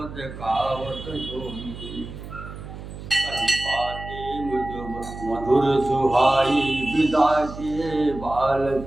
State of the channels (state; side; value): noise; right; hum, 12 dB below the sound